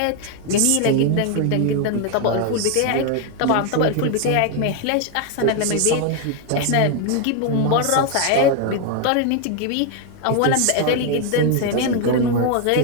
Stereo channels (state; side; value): different; both; correlation 0.01